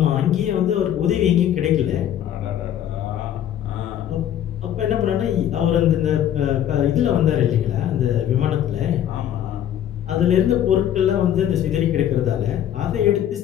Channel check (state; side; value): quieter; right; 10.7 dB